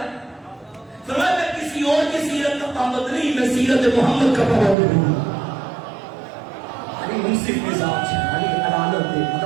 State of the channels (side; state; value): left; drops out; at 4.8 s